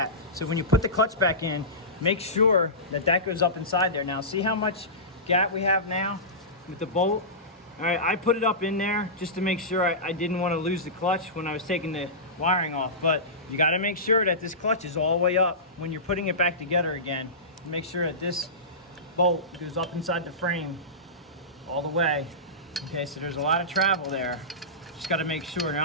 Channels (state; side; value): normal; both; correlation -0.19